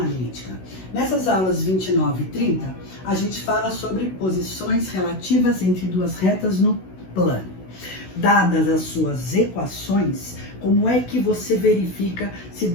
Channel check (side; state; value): right; late; 16 ms